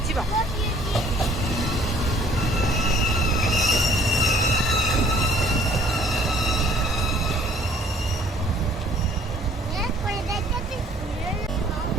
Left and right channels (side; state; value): both; normal; correlation 0.57